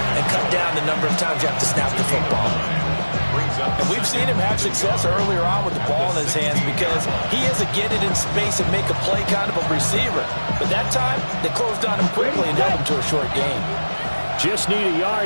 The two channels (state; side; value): inverted; both; correlation -1.00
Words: and cut down the number of times you have to snap the football. And we've seen him have success earlier on with the ball in his hands because he is a get it in space and make a play kind of a receiver. But that time, they closed on him quickly and held him to a short game. Just need a